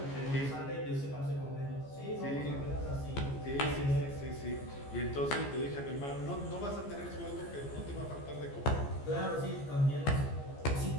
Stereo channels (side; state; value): right; late; 14 ms